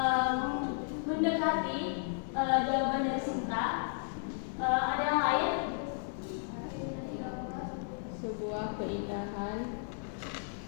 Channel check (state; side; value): silent; right; digital silence